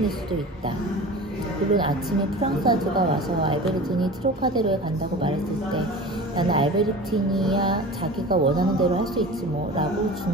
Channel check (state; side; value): normal; both; correlation 0.36